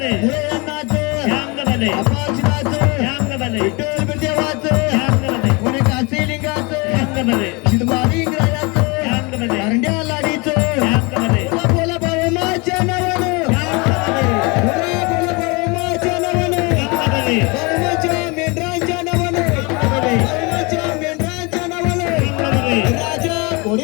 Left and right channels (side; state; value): right; quieter; 27.9 dB